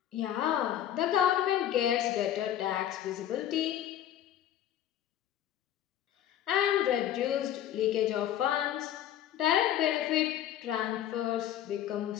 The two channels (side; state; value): right; quieter; 11.3 dB